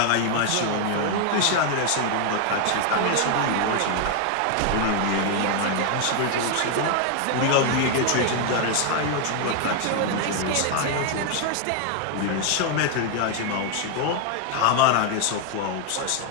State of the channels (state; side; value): different; both; correlation 0.01